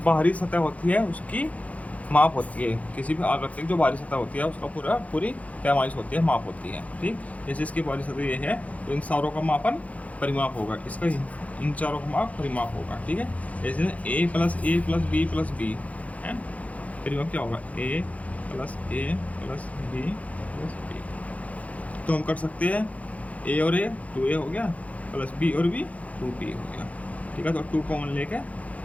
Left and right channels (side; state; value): right; late; 0.068 ms